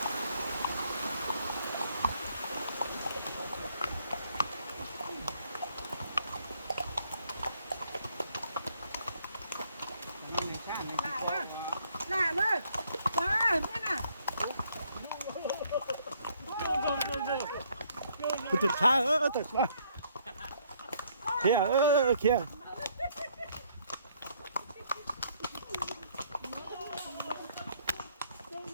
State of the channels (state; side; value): inverted; both; correlation -0.67